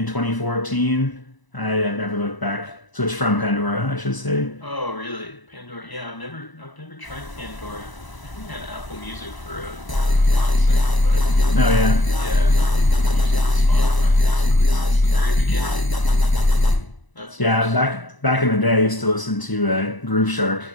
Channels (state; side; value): late; right; 1.0 ms